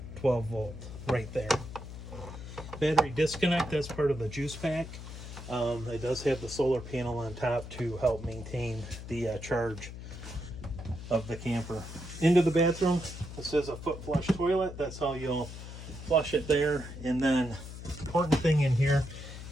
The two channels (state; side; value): noise; left; hum, 11 dB below the sound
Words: 12 volt right there. Battery disconnect, that's part of the juice pack. It does have the solar panel on top to help maintain the charge of the camper. Into the bathroom, this is a foot flush toilet. That's how you'll flush it there. And then important thing in here